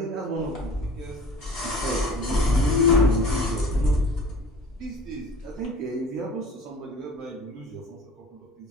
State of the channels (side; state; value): both; normal; correlation 0.43